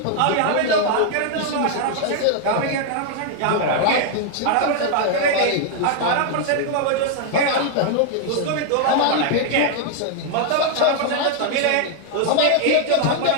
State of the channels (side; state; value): both; different; correlation 0.00